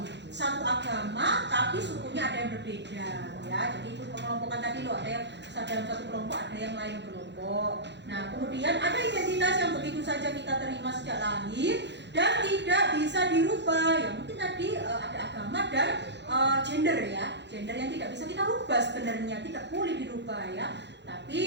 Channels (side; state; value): left; late; 0.51 ms